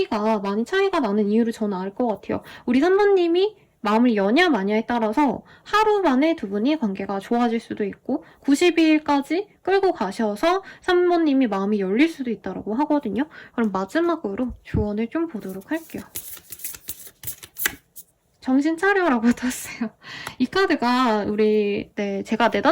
많이 차이가 나는 이유를 저는 알 것 같아요. 우리 3번님이 마음을 여냐 마냐에 따라서 하루 만에 두 분이 관계가 좋아질 수도 있고 92일까지 끌고 가셔서 3번님이 마음이 열릴 수도 있다고 하거든요. 그럼 마지막으로 조언을 좀 보도록 할게요. 정신 차려라고 떴어요. 이 카드가 제가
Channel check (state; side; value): identical; both; correlation 1.00